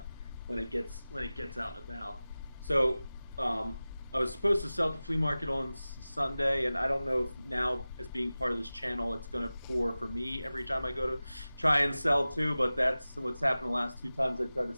it gets out and about. So I was supposed to sell at the flea market on Sunday, and I don't know if now, as being part of this channel, it's going to pour for me every time I go to try and sell too. But that's what's happened the last 2 times I tried to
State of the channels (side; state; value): both; inverted; correlation -0.96